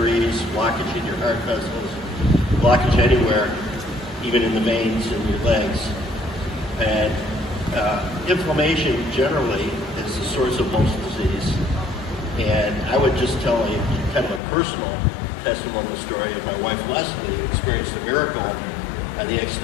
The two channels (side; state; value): right; drops out; at 14.4 s